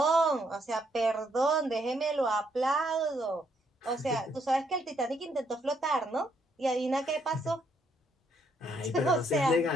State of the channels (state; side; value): normal; both; correlation 0.72